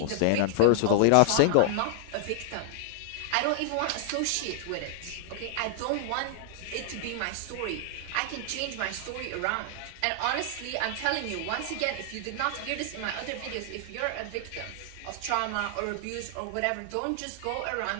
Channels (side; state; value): both; different; correlation 0.00